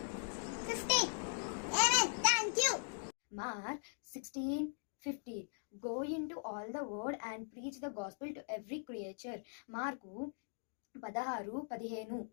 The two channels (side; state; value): right; silent; digital silence